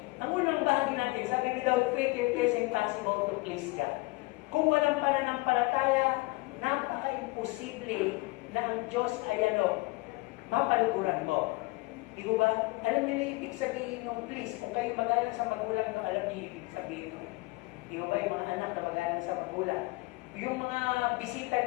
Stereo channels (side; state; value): right; quieter; 23.7 dB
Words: Ang unang bahagi natin, sabi, without faith, it is impossible to please God. Kung walang pananampalataya, napaka-imposible na ang Diyos ay mapaluguran mo. Di ko ba? Alam niyo na ibig sabihin nung please, kung kayo magalang sa magulang, alam niyo ibig sabihin nung. Di ko ba yung mga anak na magalang sa magulang? Yung mga